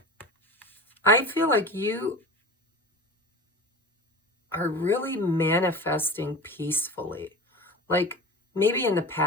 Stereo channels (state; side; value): normal; both; correlation 0.33